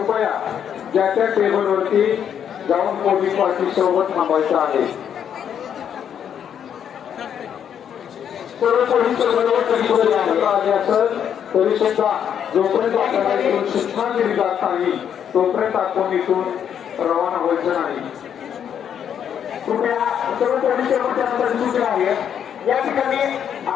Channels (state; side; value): quieter; right; 8.7 dB